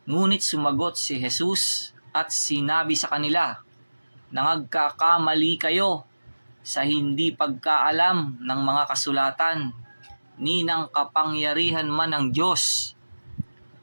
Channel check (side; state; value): both; inverted; correlation -1.00